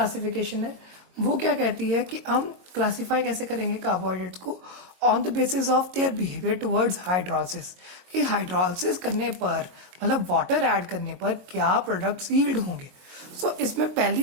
है वो क्या कहती है कि हम क्लासीफाई कैसे करेंगे कार्बोहाइड्रेट्स को, on the basis of their behaviour towards hydrolysis. कि हाइड्रोलिसिस करने पर, मतलब वाटर ऐड करने पर क्या प्रोडक्ट्स यील्ड होंगे. सो इसमें पहली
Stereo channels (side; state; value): left; late; 22 ms